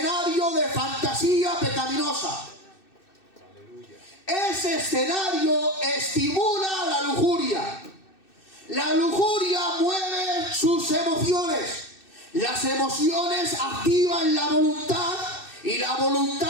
de fantasía pecaminosa. Ese escenario estimula la lujuria. La lujuria mueve sus emociones. Las emociones activan la voluntad y la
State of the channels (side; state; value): right; late; 2.6 ms